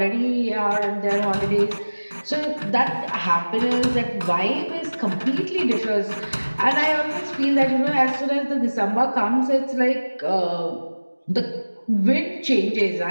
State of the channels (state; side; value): inverted; both; correlation -1.00